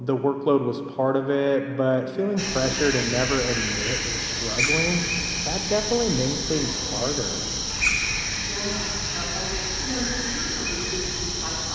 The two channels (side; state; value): both; identical; correlation 1.00